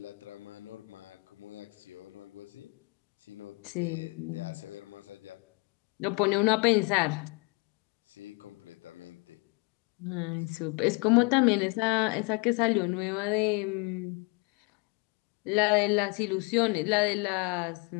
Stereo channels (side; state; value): right; quieter; 30.4 dB